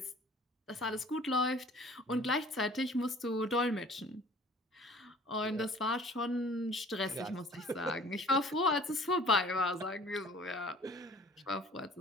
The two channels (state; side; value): normal; both; correlation 0.50